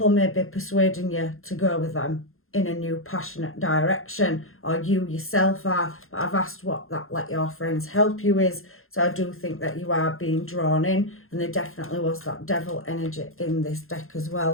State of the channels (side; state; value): right; late; 0.61 ms